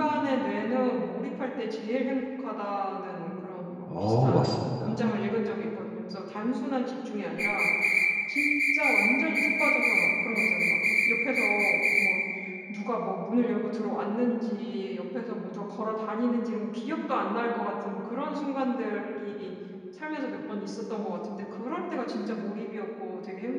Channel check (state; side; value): identical; both; correlation 1.00